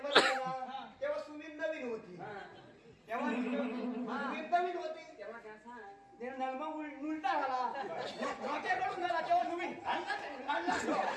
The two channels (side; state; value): both; identical; correlation 1.00